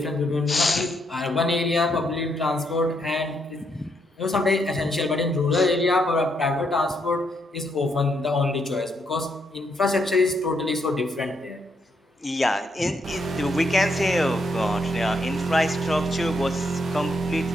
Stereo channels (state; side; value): normal; both; correlation 0.76